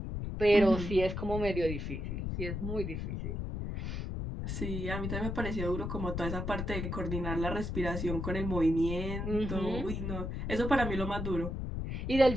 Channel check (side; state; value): left; noise; rumble, 3 dB below the sound